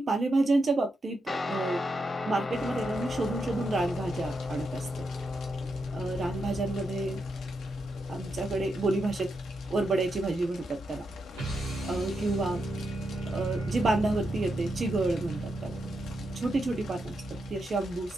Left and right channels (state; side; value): normal; both; correlation 0.84